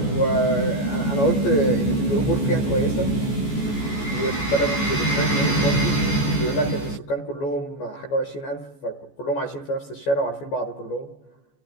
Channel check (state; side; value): late; right; 14 ms